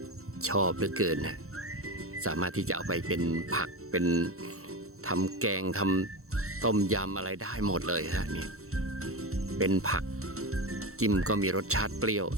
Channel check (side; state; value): left; late; 0.63 ms